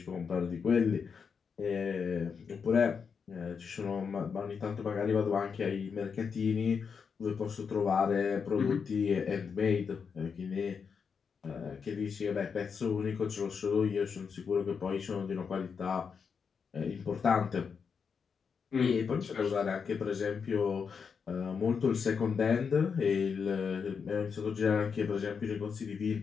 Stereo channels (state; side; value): quieter; right; 6.1 dB